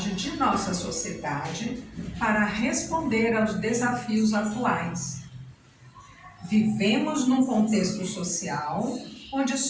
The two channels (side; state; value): both; identical; correlation 1.00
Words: de nossa sociedade para responder aos desafios atuais. Vivemos num contexto social onde